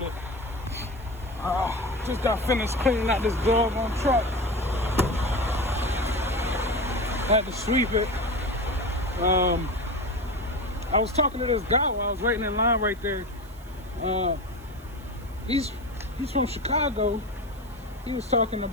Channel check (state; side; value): noise; right; hiss, 25 dB below the sound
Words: Just got finished cleaning out this doggone truck. Had to sweep it. I was talking to this guy while I was waiting in line right there. He's from Chicago. He was talking